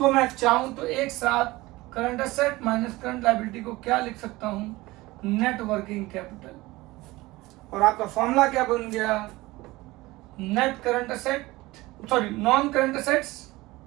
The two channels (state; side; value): quieter; left; 20.0 dB